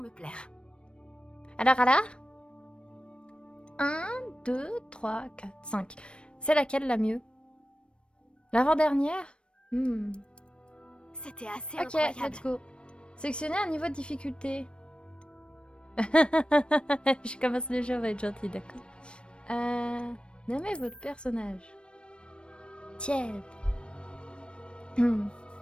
plaire. Alors 1, 2, 3, 4, 5. C'est laquelle la mieux? L'avant-dernière? C'était assez Ok, incroyable. let's go. Sélectionnez un niveau de difficulté. Je commence le jeu, on va être gentil, d'accord. Nommez votre personnage. Tiens.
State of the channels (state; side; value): late; right; 0.057 ms